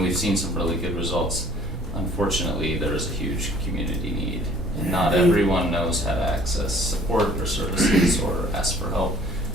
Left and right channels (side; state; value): both; normal; correlation 0.55